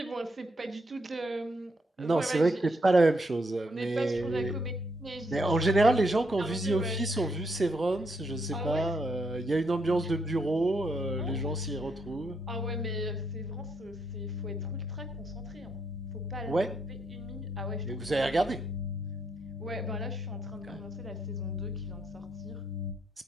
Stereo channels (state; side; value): normal; both; correlation 0.76